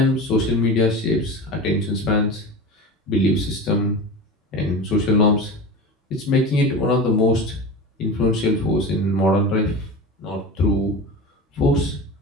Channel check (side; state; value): both; normal; correlation 0.30